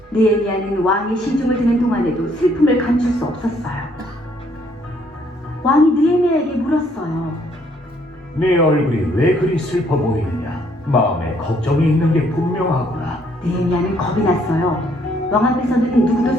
느헤미야는 왕의 시중을 듣는 동안에도 슬픔을 감출 수 없었어요. 왕이 느헤미야에게 물었어요. 네 얼굴이 왜 그리 슬퍼 보이느냐? 마음에 걱정이 있는 게 분명하구나. 느헤미야는 겁이 났어요. 왕 앞에서는 누구도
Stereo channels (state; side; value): normal; both; correlation 0.67